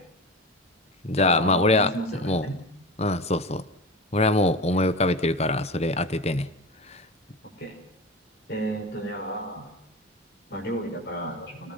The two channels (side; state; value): both; normal; correlation 0.27